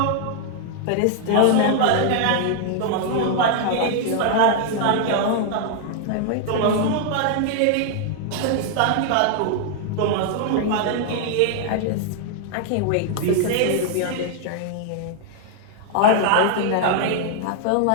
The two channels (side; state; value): both; different; correlation 0.00